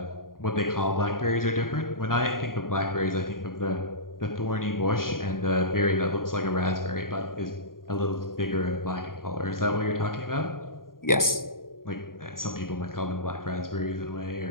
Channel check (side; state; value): right; late; 0.91 ms